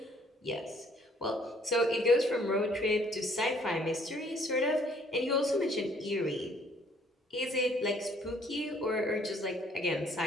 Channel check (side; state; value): both; normal; correlation 0.62